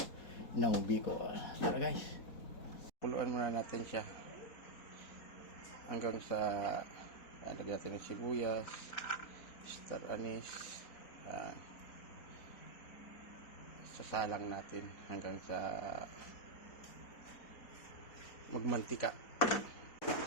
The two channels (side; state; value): right; late; 4.1 ms